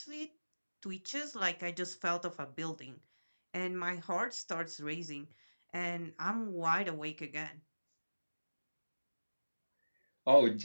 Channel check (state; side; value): inverted; both; correlation -1.00